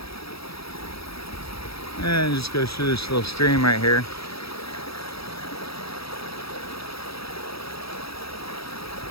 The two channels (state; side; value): late; right; 0.76 ms